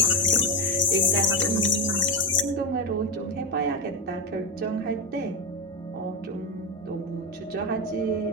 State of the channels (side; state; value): both; normal; correlation 0.12